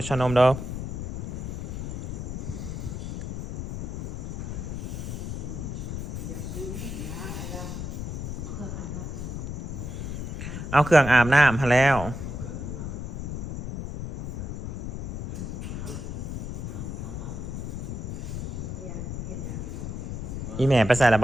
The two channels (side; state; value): left; noise; rumble, 5 dB below the sound